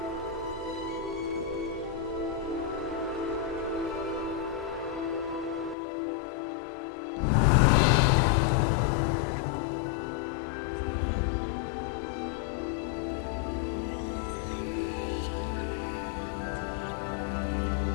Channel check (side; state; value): right; drops out; at 5.8 s